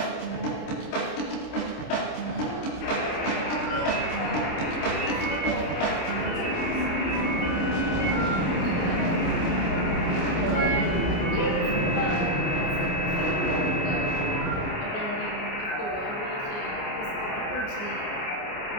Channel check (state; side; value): late; right; 29 ms